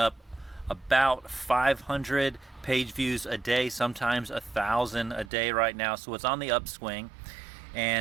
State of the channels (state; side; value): drops out; left; at 5.3 s